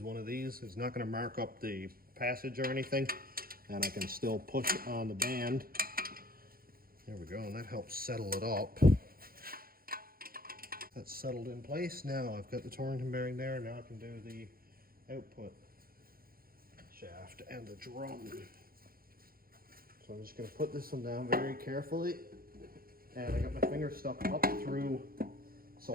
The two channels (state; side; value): late; left; 0.42 ms